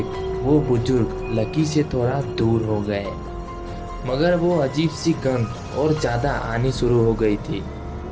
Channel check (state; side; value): identical; both; correlation 1.00